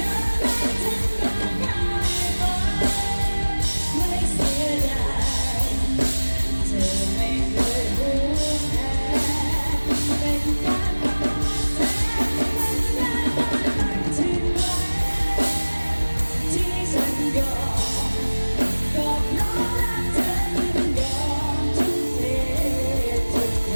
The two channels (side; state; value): both; inverted; correlation -1.00